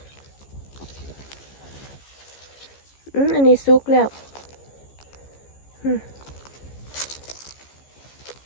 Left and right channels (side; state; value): right; late; 15 ms